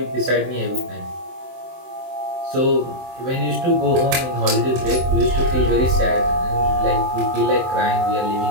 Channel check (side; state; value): left; late; 23 ms